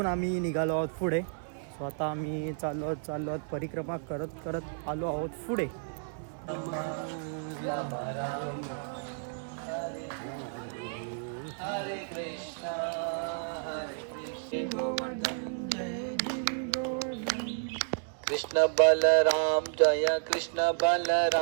आम्ही निघालो आहोत पुढे। सो आता आम्ही चाललो आहोत परिक्रमा करत करत आलो आहोत पुढे। कृष्ण बलराम जय कृष्ण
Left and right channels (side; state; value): left; silent; digital silence